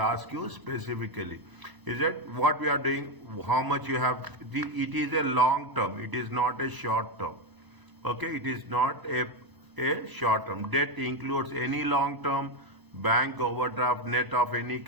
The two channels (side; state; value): left; late; 1.0 ms